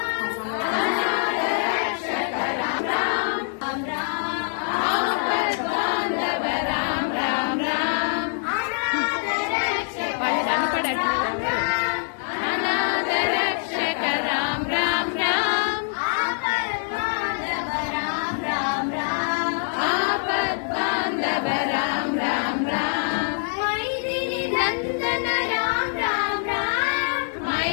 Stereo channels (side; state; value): right; silent; digital silence